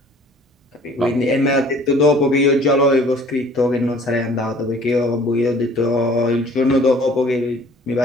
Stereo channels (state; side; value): normal; both; correlation 0.52